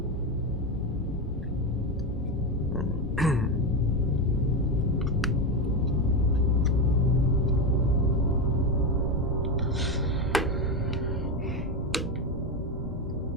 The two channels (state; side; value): normal; both; correlation 0.14